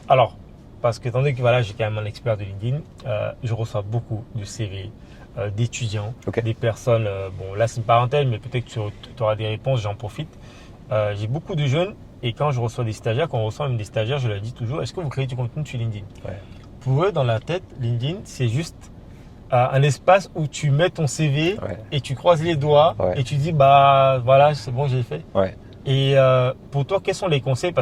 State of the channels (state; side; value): identical; both; correlation 1.00